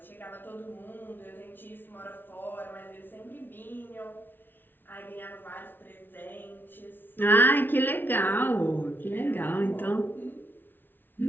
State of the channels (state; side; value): late; right; 0.096 ms